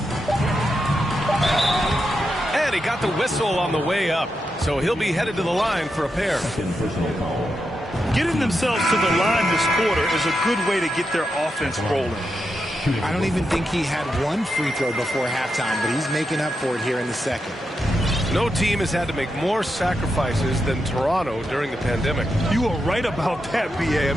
And he got the whistle on the way up. So he'll be headed to the line for a pair. Getting themselves to the line this quarter is a good way to get their offense rolling. I don't even think he had one free throw before halftime, but he's making up for it here in the second. No team has had to make more sacrifices than Toronto during the pandemic. You are right about that, B.A. I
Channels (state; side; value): normal; both; correlation 0.86